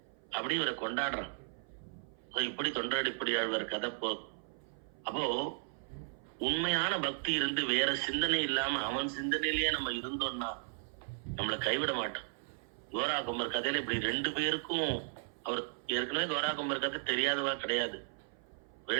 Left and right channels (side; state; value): left; silent; 54 dB below the other